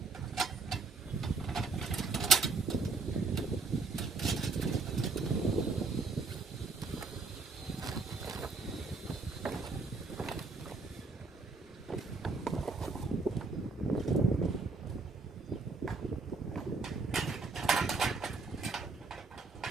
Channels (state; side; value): quieter; left; 4.0 dB